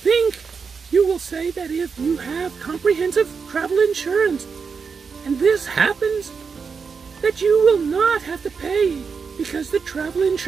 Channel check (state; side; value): quieter; left; 5.6 dB